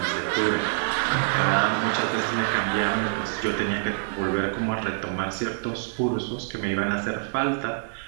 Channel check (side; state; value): left; silent; 61 dB below the other